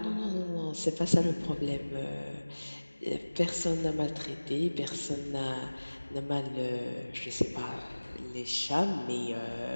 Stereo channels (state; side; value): inverted; both; correlation -1.00